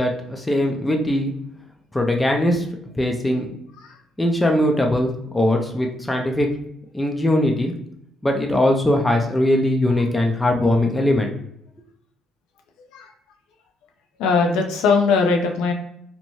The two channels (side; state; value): both; normal; correlation 0.79